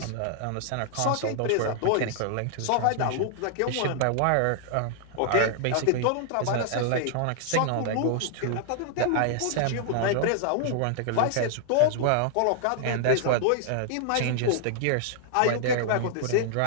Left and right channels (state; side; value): different; both; correlation -0.01